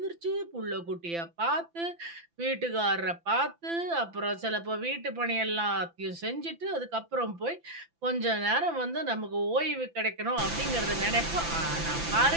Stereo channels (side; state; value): left; late; 5.9 ms